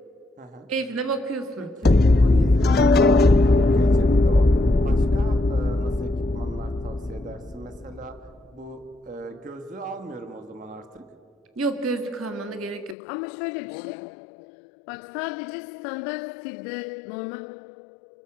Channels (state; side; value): drops out; right; at 13.0 s